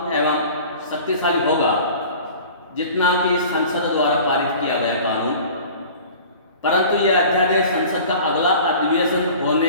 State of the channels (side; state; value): both; inverted; correlation -0.43